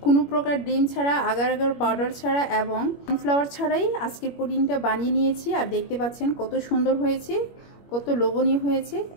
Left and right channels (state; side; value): late; right; 21 ms